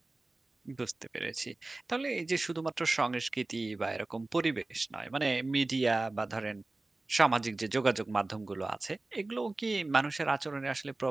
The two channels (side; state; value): left; quieter; 3.1 dB